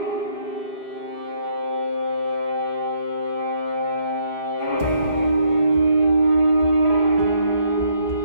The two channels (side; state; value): left; late; 4.6 ms